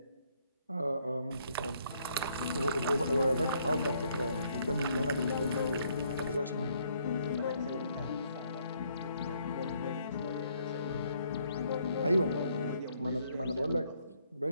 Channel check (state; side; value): inverted; both; correlation -0.69